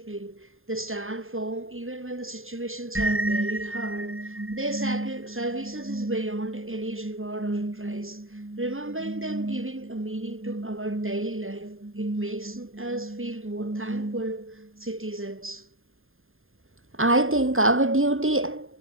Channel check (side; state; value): left; late; 0.60 ms